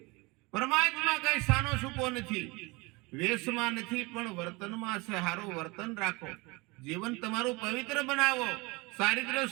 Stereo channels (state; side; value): quieter; left; 25.6 dB